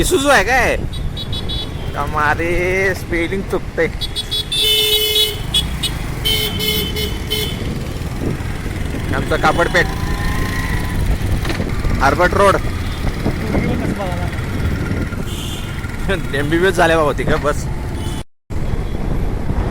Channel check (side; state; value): both; identical; correlation 1.00